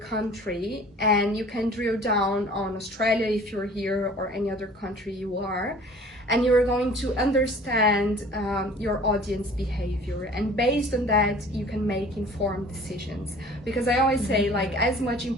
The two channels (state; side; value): normal; both; correlation 0.48